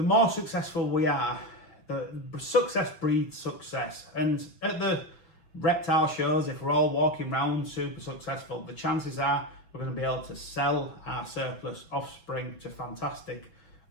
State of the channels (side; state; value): right; late; 6.1 ms